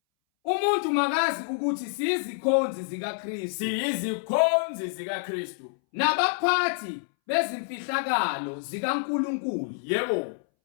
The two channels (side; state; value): right; silent; 60 dB below the other